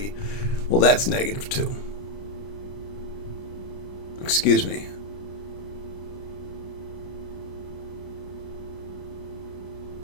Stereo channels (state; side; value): late; right; 30 ms